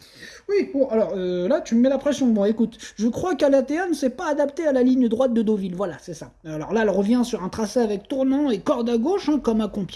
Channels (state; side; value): identical; both; correlation 1.00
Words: Oui, bon, alors là, tu me mets la pression. Bon, écoute, je crois qu'Alatea ne s'est pas adaptée à la ligne droite de Deauville. Voilà, c'est ça. Alors là, elle revient sur un tracé avec tournant et corde à gauche, comme à